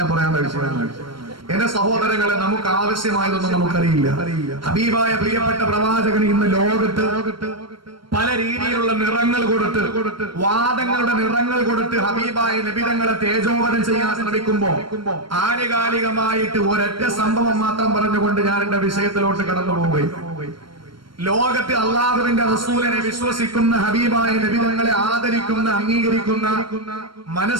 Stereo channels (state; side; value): late; left; 0.73 ms